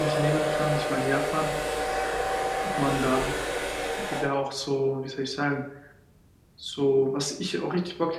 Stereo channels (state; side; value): identical; both; correlation 1.00